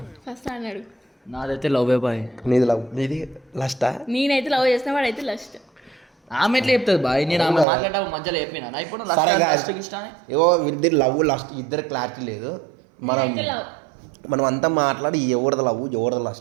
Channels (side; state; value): left; drops out; at 7.7 s